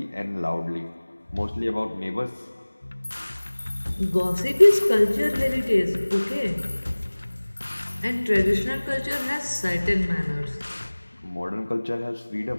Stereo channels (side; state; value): both; inverted; correlation -1.00